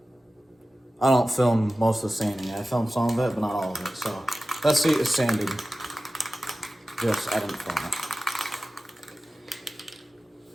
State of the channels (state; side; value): normal; both; correlation 0.95